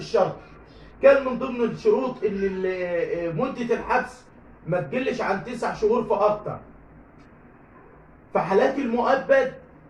كان من ضمن الشروط ان مدة الحبس ما تقلش عن 9 شهور فاكتر. في حالات المؤبد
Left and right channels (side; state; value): both; identical; correlation 1.00